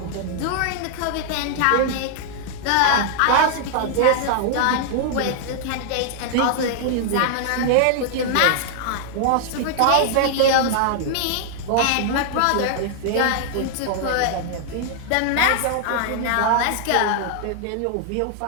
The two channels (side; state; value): both; different; correlation -0.01